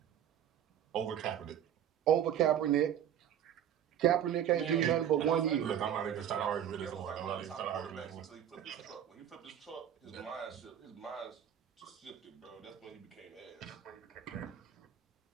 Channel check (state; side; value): quieter; left; 10.0 dB